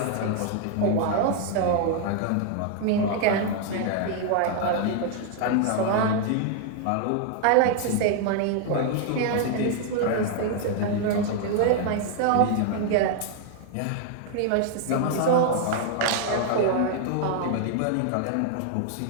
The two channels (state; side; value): different; both; correlation 0.00